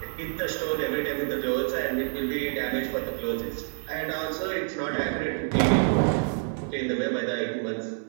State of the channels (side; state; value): left; silent; 57 dB below the other